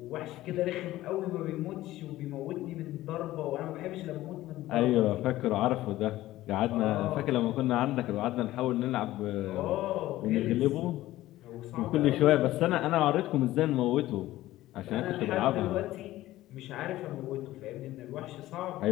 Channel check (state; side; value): quieter; right; 15.8 dB